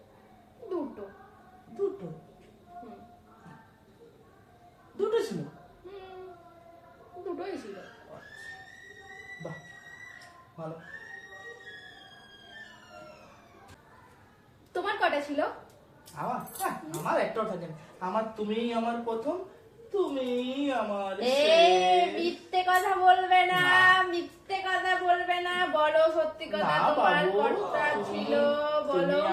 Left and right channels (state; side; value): identical; both; correlation 1.00